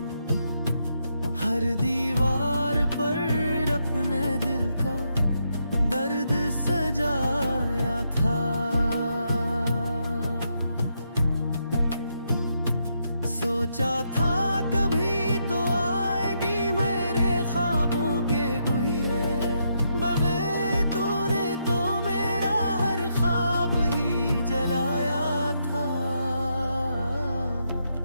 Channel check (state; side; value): inverted; both; correlation -0.79